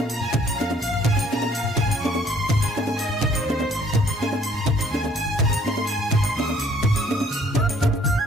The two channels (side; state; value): both; normal; correlation 0.61